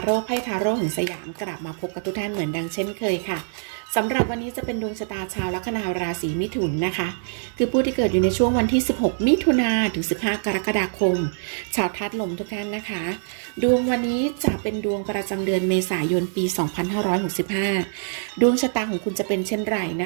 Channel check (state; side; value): silent; left; digital silence